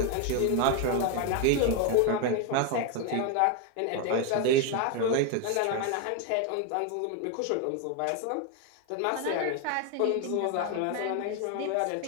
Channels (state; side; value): different; both; correlation 0.01